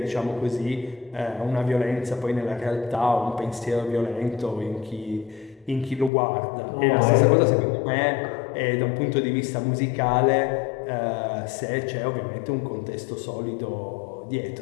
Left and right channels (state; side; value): drops out; right; at 6.1 s